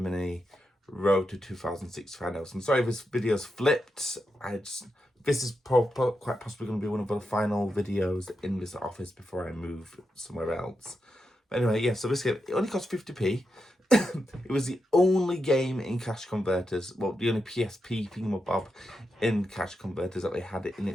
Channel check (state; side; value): normal; both; correlation 0.87